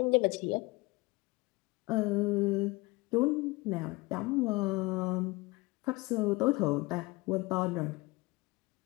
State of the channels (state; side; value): quieter; right; 23.6 dB